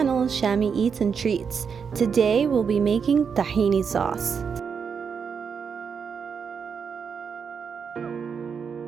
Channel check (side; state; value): left; quieter; 6.4 dB